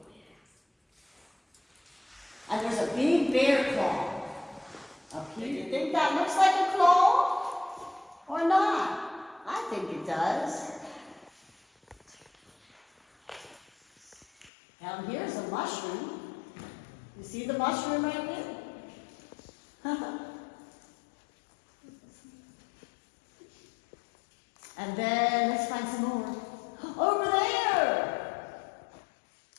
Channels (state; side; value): drops out; right; at 14.5 s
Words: And there's a big bear claw up here. You think that looks like a claw or not? I think it does. Down here's a mushroom. see the mushroom right there? And then let's find some more. Over there!